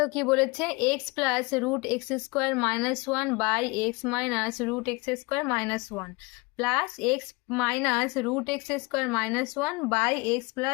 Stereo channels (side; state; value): right; quieter; 26.2 dB